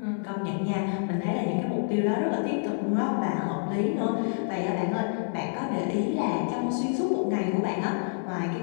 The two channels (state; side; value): silent; right; 59 dB below the other